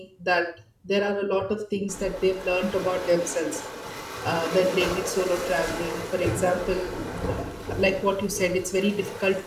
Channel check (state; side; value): identical; both; correlation 1.00